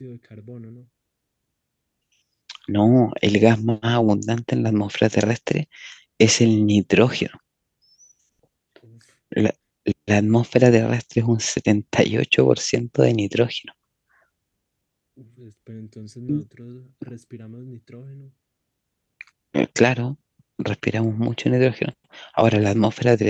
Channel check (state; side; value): identical; both; correlation 1.00